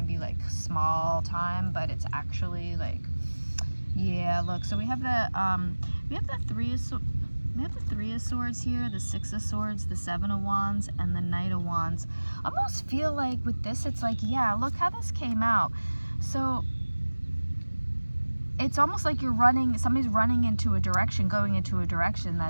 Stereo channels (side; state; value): both; inverted; correlation -1.00